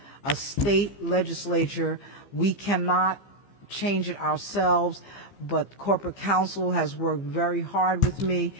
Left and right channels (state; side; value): late; right; 15 ms